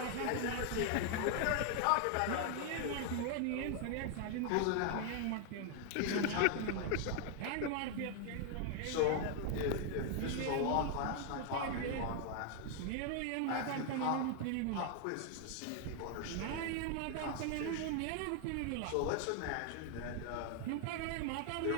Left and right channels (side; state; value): both; different; correlation 0.00